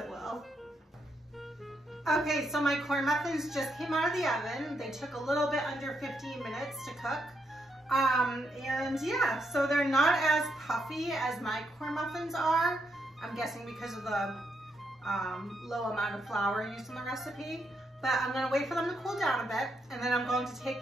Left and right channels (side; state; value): both; normal; correlation 0.79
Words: will. Okay, so my corn muffins just came out of the oven. They took a little bit under 15 minutes to cook. And yeah, so they're not as puffy as my corn muffins are. I'm guessing because of the low amount of flour used in the recipe. But I'm gonna wait for them to cool down a bit, and then I'm going to take